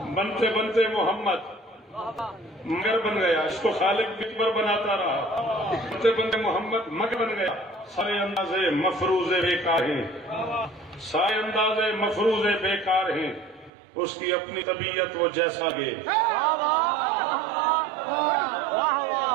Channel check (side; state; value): left; drops out; at 13.7 s